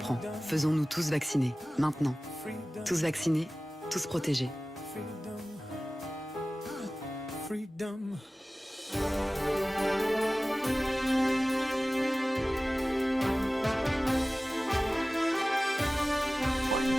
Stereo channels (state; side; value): normal; both; correlation 0.97